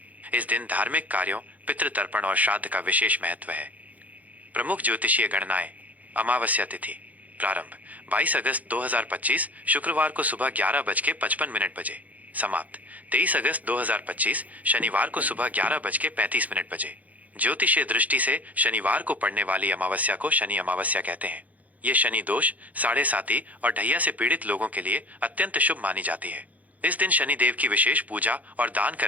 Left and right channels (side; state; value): left; late; 0.076 ms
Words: इस दिन धार्मिक कार्यों, पितृतर्पण और श्राद्ध का विशेष महत्व है। प्रमुख ज्योतिषीय गणनाएं। अमावस्या तिथि प्रारंभ 22 अगस्त 2025 शुक्रवार को सुबह 11:55 बजे। समाप्त 23 अगस्त 2025 शनिवार को सुबह 11:35 बजे। ज्योतिषीय दृष्टि से शनिवार को पड़ने वाली अमावस्या को शनि अमावस्या कहते हैं। ये शनि दोष, साढ़े साती और ढैया से पीड़ित लोगों के लिए अत्यंत शुभ मानी जाती है। इस दिन शनि देव की विशेष पूजा और दान